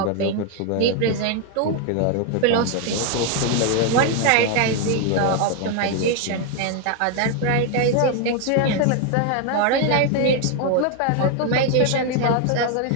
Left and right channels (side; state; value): both; different; correlation 0.01